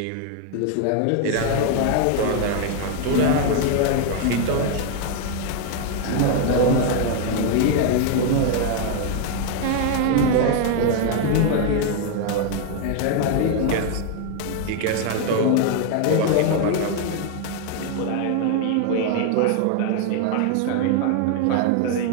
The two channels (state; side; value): different; both; correlation 0.00